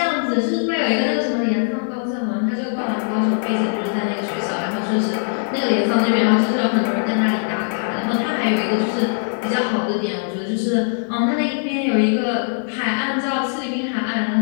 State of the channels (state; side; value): silent; right; digital silence